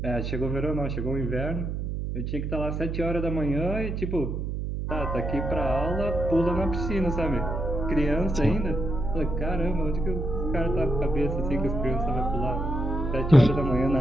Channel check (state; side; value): noise; right; hum, 3 dB below the sound